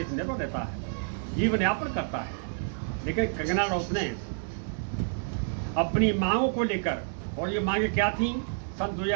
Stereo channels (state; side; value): silent; left; digital silence